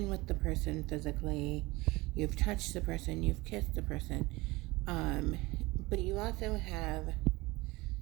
with the person physically, you've touched the person, you've kissed the person. Um but you also have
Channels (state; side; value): quieter; left; 21.7 dB